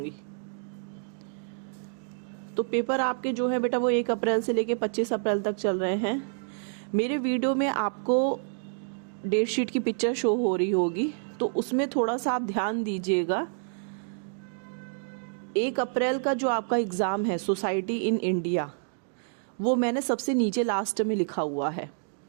तो पेपर आपके जो है बेटा वो 1 अप्रैल से लेके 25 अप्रैल तक चल रहे हैं। मेरे वीडियो में आपको डेट शीट की पिक्चर शो हो रही होगी, तो उसमें थोड़ा सा आप ध्यान दीजिएगा। 1 अप्रैल का जो आपका एग्ज़ाम है सोसाइटी इन इंडिया, वो मैंने सबसे नीचे लास्ट में लिखा हुआ है,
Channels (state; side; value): silent; left; digital silence